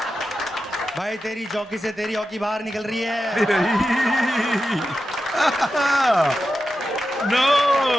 भाई तेरी जॉकी से तेरी हॉकी बाहर निकल रही है। नो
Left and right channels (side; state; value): both; normal; correlation 0.91